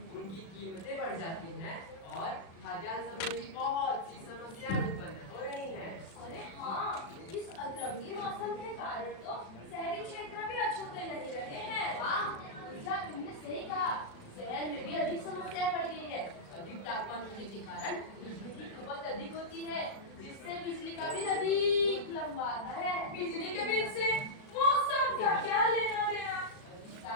उनकी कीमतें बढ़ जाती हैं और खाद्यान्न संबंधी बहुत सी समस्याएं उत्पन्न हो रही हैं। अरे हाँ, इस अतरंगी मौसम के कारण तो शहरी क्षेत्र भी अछूते नहीं रहे हैं। हाँ, ऊर्जा तुमने सही कहा। शहर में भी अधिक समस्याएं बढ़ गई है। अधिक तापमान होने के कारण बिजली की खपत अधिक होती है, जिससे बिजली का बिल अधिक लंबा आता है। बिजली के बिल से मौसम का क्या लेना देना? अधिक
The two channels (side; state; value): right; late; 36 ms